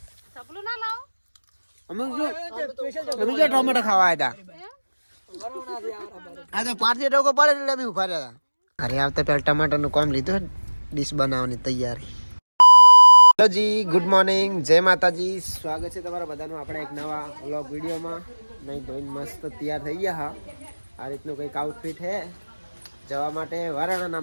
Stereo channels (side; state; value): both; inverted; correlation -1.00